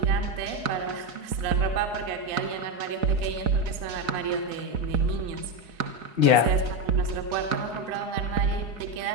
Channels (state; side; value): late; left; 4.7 ms